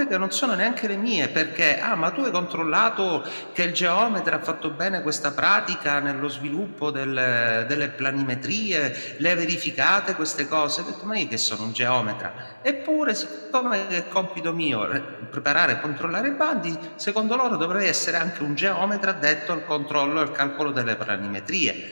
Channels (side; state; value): both; inverted; correlation -1.00